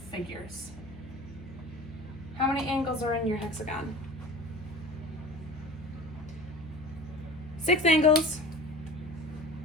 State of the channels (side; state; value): left; noise; hum, 18 dB below the sound